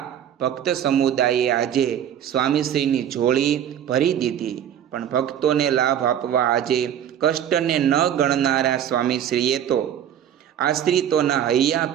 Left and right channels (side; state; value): left; quieter; 9.8 dB